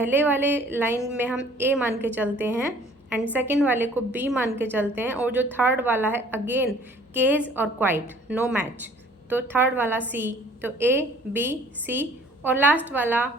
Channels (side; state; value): both; normal; correlation 0.54